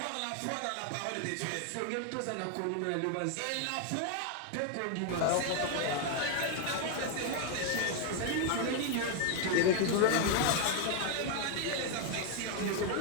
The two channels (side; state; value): both; different; correlation 0.01